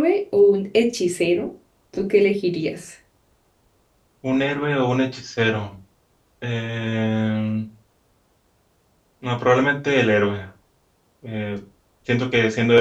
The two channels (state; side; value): identical; both; correlation 1.00